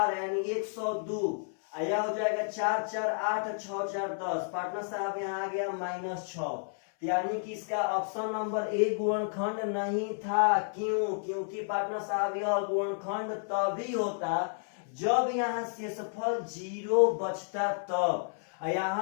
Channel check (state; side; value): silent; right; 57 dB below the other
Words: यानी 102, यह हो जाएगा 4 4 8 6 4 10। पार्टनर साहब यहाँ आ गया -6, यानी कि इसका ऑप्शन नंबर ए गुणनखंड नहीं था। क्यों? क्योंकि पार्टनर साहब यह गुणनखंड तभी होता जब यहाँ शेषफल 0 बचता तब।